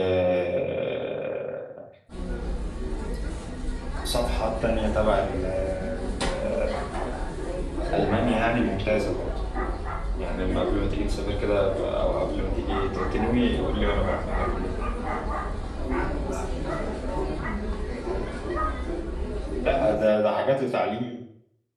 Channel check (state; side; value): identical; both; correlation 1.00